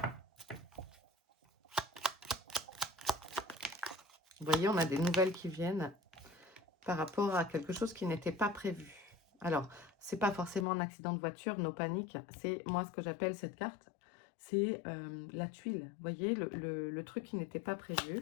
Vous voyez, on a des nouvelles qui viennent par rapport à quelque chose qui n'était pas prévu. Alors, c'est pas forcément un accident de voiture, nos paniques. C'est moi ce que j'appelle cette carte, c'est la tuile. Vous voyez, le truc qui n'était pas prévu.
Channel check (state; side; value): drops out; right; at 10.7 s